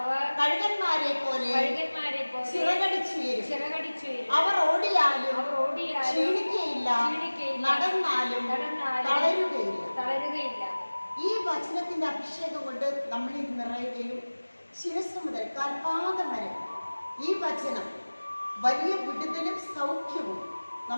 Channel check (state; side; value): inverted; both; correlation -1.00